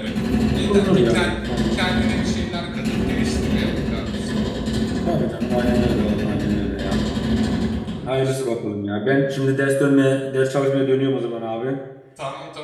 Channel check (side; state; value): both; identical; correlation 1.00